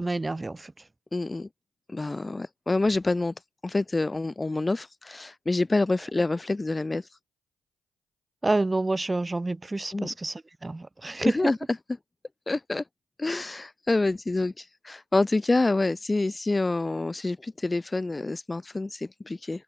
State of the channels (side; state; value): both; normal; correlation 0.98